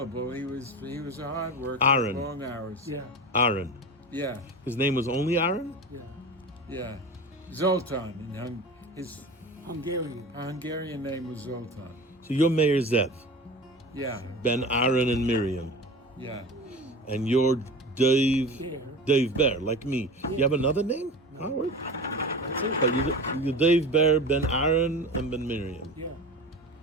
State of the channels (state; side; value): normal; both; correlation 0.32